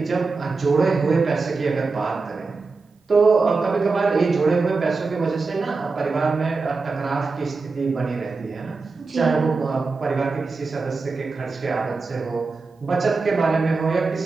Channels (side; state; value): left; quieter; 4.1 dB